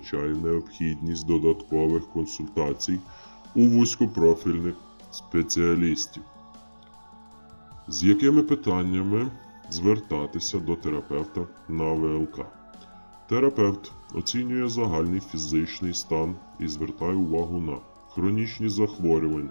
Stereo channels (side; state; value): both; inverted; correlation -1.00